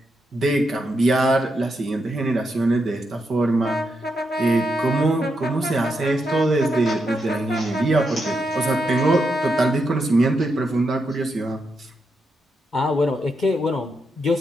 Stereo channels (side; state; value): both; normal; correlation 0.83